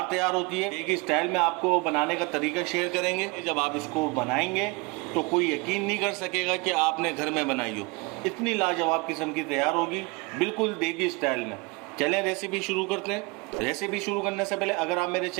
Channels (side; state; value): left; quieter; 26.7 dB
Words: तैयार होती है। एक ही स्टाइल में आपको बनाने का तरीका शेयर करेंगे। जब आप इसको बनाएंगे तो कोई यकीन नहीं कर सकेगा कि आपने घर में बनाई हो। इतनी लाजवाब किस्म की तैयार होगी, बिल्कुल देगी स्टाइल में। चलें रेसिपी शुरू करते हैं। रेसिपी शुरू करने से पहले अगर आप मेरे